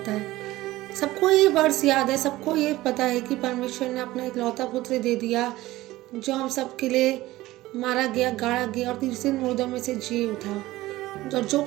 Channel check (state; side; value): quieter; left; 17.4 dB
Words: है। सबको ये वर्ड्स याद है, सबको ये पता है कि परमेश्वर ने अपना इकलौता पुत्र दे दिया जो हम सबके लिए मारा गया, गाड़ा गया और तीसरे दिन मुर्दों में से जी उठा। और जो